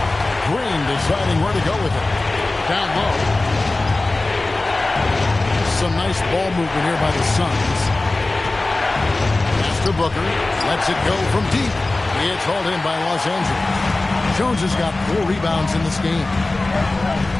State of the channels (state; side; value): quieter; right; 3.0 dB